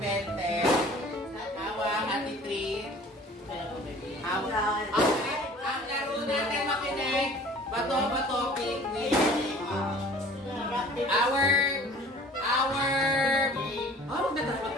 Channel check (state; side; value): normal; both; correlation 0.48